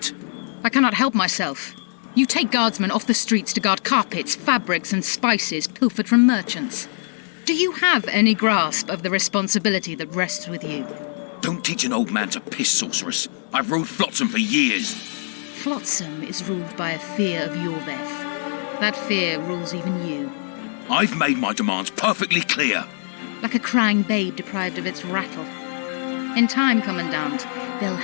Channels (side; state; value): right; silent; digital silence